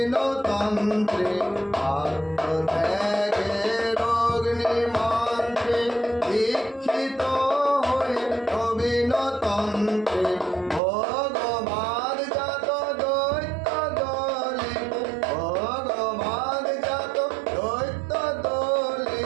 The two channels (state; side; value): drops out; left; at 10.8 s